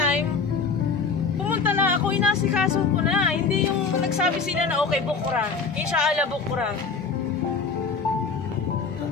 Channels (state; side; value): quieter; right; 4.9 dB